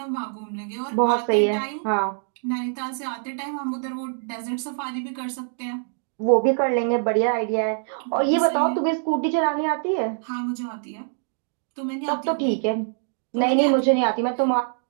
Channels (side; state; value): left; silent; digital silence